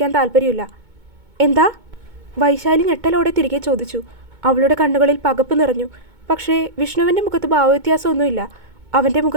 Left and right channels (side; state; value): left; late; 2.2 ms